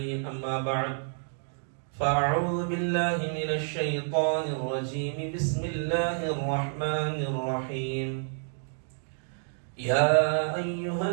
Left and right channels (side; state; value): left; silent; digital silence